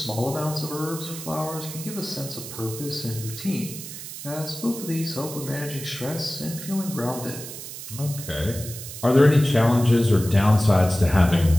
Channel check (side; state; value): right; noise; hiss, 11 dB below the sound